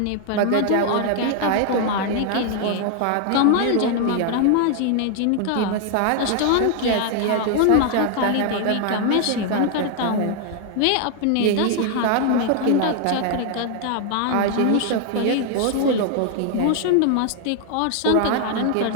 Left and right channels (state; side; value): different; both; correlation 0.00